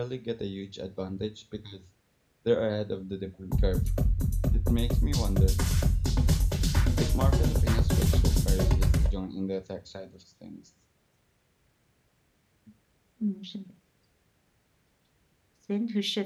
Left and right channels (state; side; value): identical; both; correlation 1.00